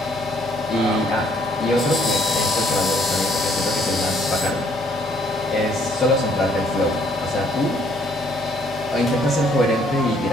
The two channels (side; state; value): both; normal; correlation 0.65